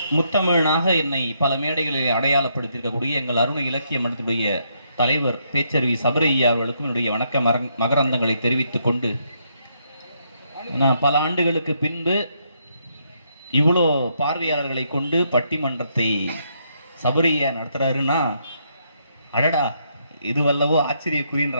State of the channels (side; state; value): both; inverted; correlation -0.75